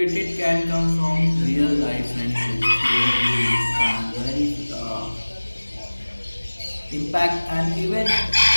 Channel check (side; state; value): both; inverted; correlation -1.00